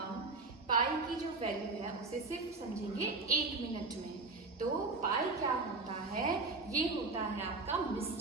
पाई की जो वैल्यू है उसे सिर्फ समझेंगे 1 मिनट में। तो पाई क्या होता है? ये होता है आपका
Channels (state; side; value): quieter; left; 3.7 dB